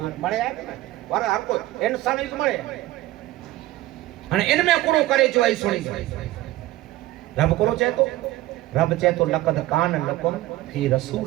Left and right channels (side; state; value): left; quieter; 16.4 dB